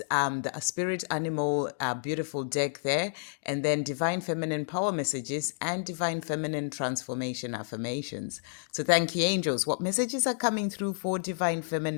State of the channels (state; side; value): silent; right; digital silence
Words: the spirit animal beautiful deck there, and then divine feminine power messages and divine feminine transformation affirmations. So thank you, angels. What messages are coming through for divine